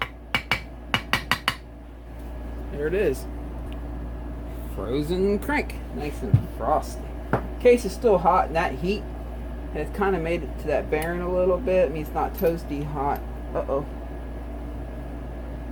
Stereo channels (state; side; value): identical; both; correlation 1.00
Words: There it is. Frozen crank. Nice and frosty. Case is still hot, and that heat has kind of made it to that bearing a little bit. I mean, it's not toasty hot. Uh-oh.